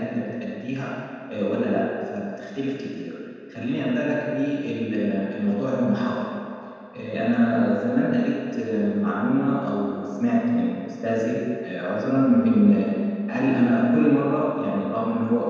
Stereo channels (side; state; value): both; identical; correlation 1.00